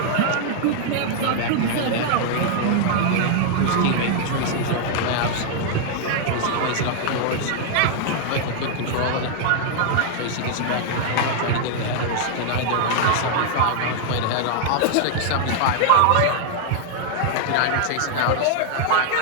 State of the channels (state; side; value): different; both; correlation 0.00